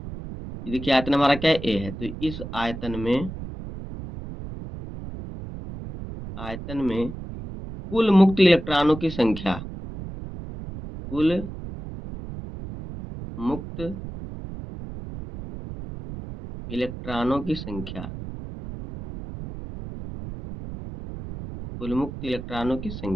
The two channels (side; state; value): right; noise; rumble, 10 dB below the sound